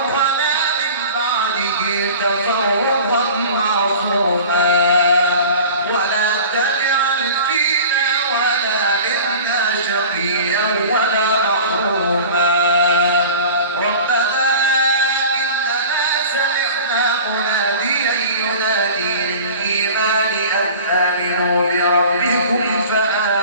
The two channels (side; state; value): both; inverted; correlation -0.40